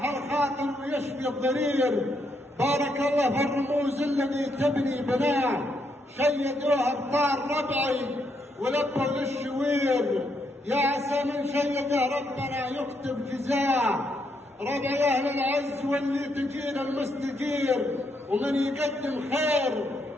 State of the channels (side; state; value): both; normal; correlation 0.77